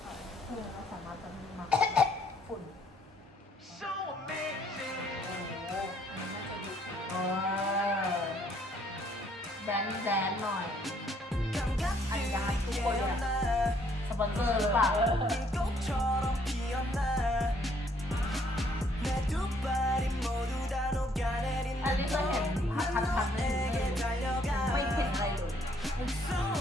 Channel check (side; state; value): both; normal; correlation 0.66